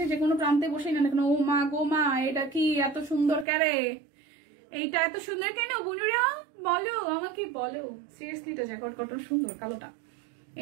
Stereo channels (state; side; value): drops out; left; at 3.5 s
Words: যে কোনো প্রান্তে বসেই নেন না কেন। ও মা গো মা, এটা কি এত সুন্দর কেরে, এইটা এত সুন্দর কেন বুঝুরা বলো আমাকে বলো। সিরিয়াসলি এটা জ্যাকওয়ার্ড কটন সুন্দর, কালোটা।